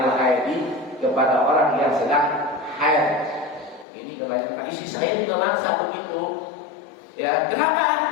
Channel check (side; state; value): right; drops out; at 3.9 s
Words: haidi kepada orang yang sedang haid. Ini kebanyakan isi saya juga masa begitu. Ya, kenapa?